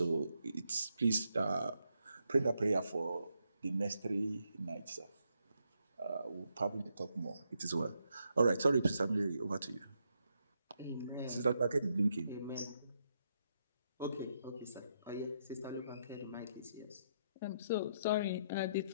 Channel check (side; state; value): both; inverted; correlation -0.79